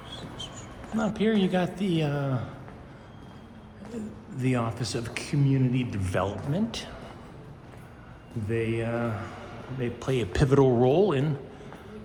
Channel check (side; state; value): both; identical; correlation 1.00